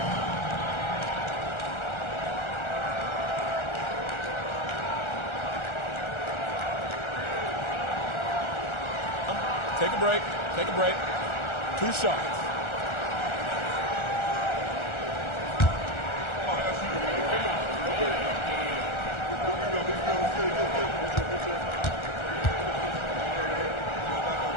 Take a break. Take a break. 2 shots.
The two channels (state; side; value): late; right; 1.4 ms